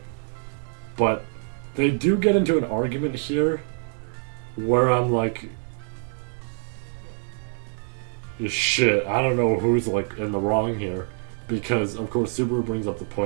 But they do get into an argument here where I'm like, shit, I don't know who's like in the wrong here, because of course Subaru brings up the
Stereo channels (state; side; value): silent; left; 55 dB below the other